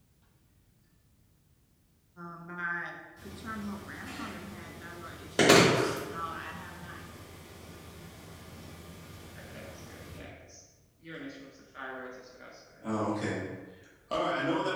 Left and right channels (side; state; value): both; identical; correlation 1.00